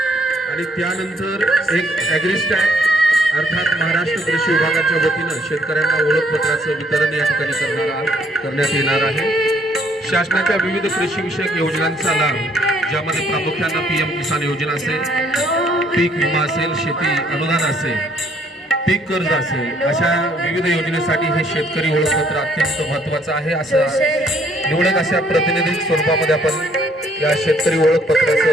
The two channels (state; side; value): normal; both; correlation 0.65